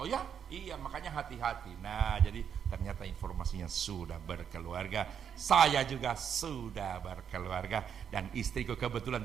ya? Iya, makanya hati-hati. Nah, jadi ternyata informasinya sudah berkeluarga. Saya juga sudah berkeluarga, dan istriku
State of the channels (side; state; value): left; quieter; 7.9 dB